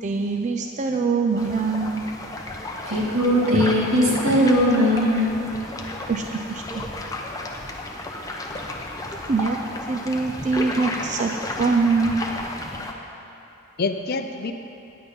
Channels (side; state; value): both; normal; correlation 0.46